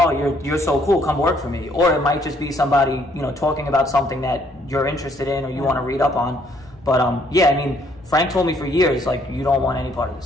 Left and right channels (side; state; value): both; normal; correlation 0.66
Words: you're so cool, come work for me. Or it might just be somebody, you know, talking about something that you're interested in or you want to read up on. But yeah, I mean, Frank told me for years, like, you don't want any part of